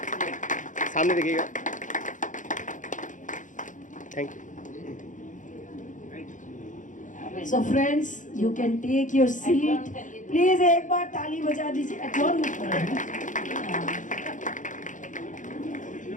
सामने देखिएगा। Thank you. So friends you can take your seat, please एक बार ताली बजा दीजिए। एडजॉर्न मत करो।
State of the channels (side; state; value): right; late; 0.37 ms